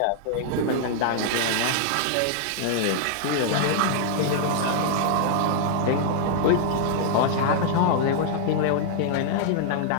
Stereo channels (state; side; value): different; both; correlation -0.01